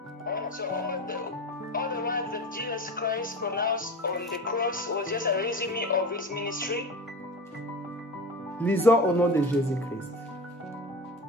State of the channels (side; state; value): both; normal; correlation 0.31